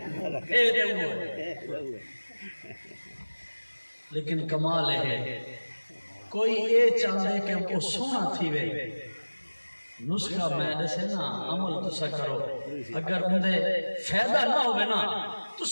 اے دے ہوئے لیکن کمال ہے کوئی اے چاہتے کہ وہ سونا تھی وے نسخہ میں دسے نا عمل تسا کرو اگر اندے فیدہ نہ ہوئے نا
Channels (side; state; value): both; inverted; correlation -1.00